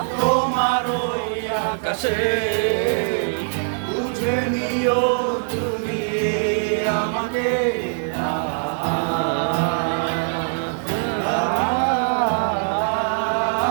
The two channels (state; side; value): silent; left; 64 dB below the other